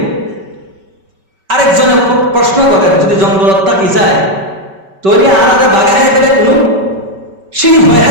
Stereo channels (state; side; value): late; left; 5.2 ms